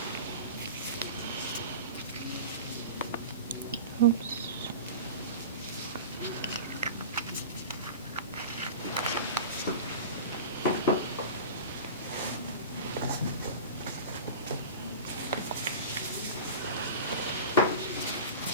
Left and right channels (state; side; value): inverted; both; correlation -0.32